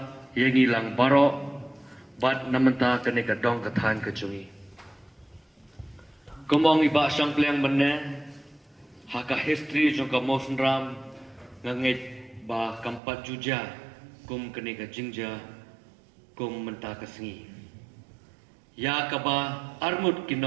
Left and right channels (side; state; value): left; drops out; at 13.0 s